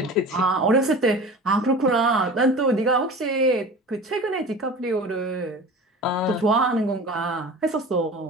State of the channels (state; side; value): normal; both; correlation 0.37